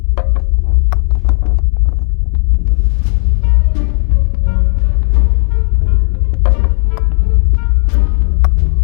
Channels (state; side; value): quieter; right; 37.1 dB